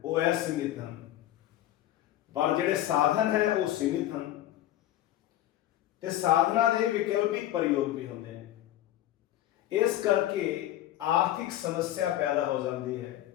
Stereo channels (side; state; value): right; quieter; 13.4 dB